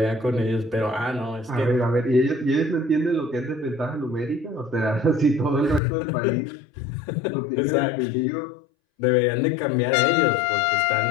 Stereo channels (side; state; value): right; drops out; at 5.8 s